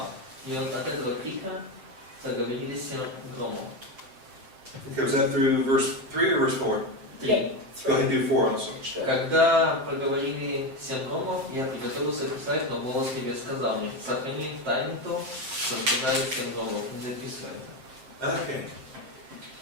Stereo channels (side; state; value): left; late; 7.6 ms